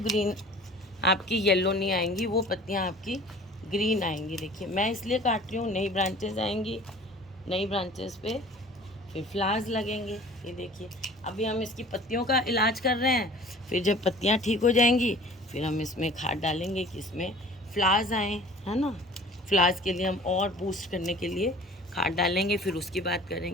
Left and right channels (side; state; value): both; normal; correlation 0.46